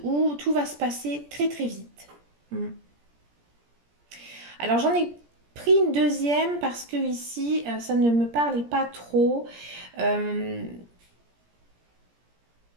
où tout va se passer très très vite. Alors j'en ai pris une deuxième parce que ici, ça ne me parlait pas trop. Euh,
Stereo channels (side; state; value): left; late; 17 ms